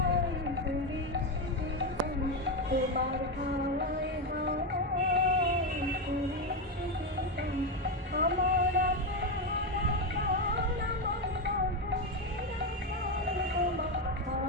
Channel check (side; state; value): both; normal; correlation 0.10